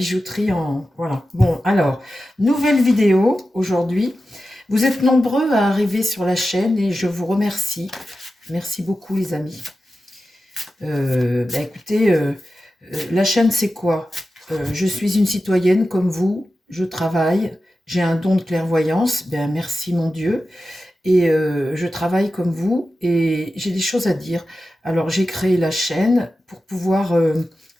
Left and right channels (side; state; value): both; normal; correlation 0.93